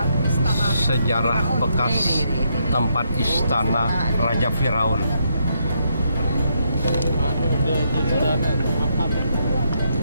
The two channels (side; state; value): both; inverted; correlation -0.77